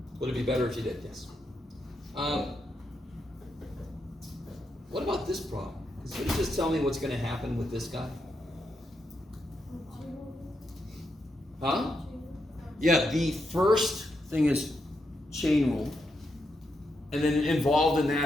Would it be better if you did? Yes. What about this problem? Can somebody just tell me what's going to happen with this guy? Huh? Yeah, the first thing is chain rule. And then involved in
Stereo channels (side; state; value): both; normal; correlation 0.83